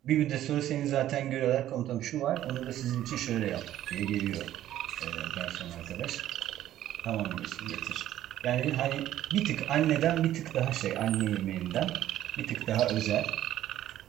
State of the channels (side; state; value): left; quieter; 12.8 dB